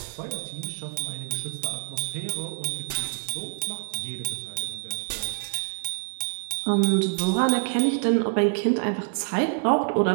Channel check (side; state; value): left; silent; digital silence